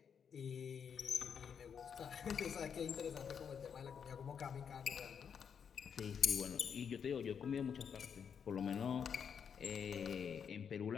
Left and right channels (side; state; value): right; quieter; 7.2 dB